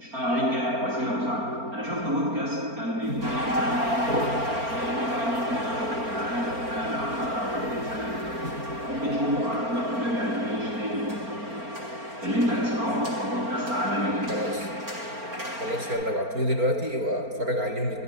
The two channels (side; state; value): left; late; 4.4 ms